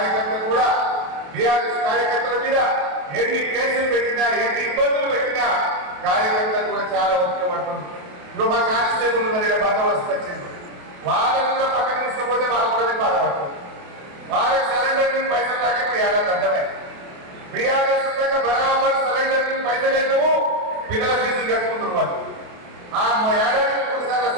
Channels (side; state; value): left; late; 28 ms